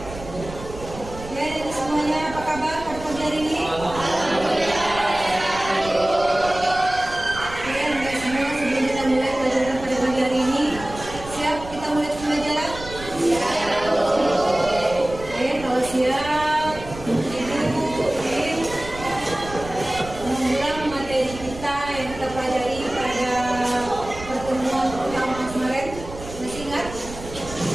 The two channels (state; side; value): noise; right; rumble, 13 dB below the sound